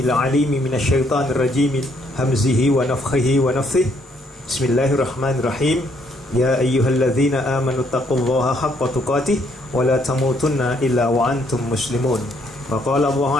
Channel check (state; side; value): normal; both; correlation 0.69